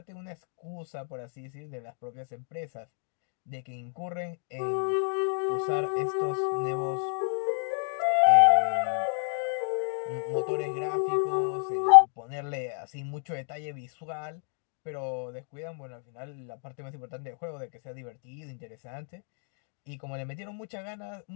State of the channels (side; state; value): right; silent; 58 dB below the other